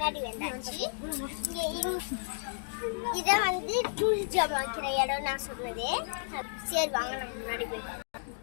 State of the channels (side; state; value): right; silent; digital silence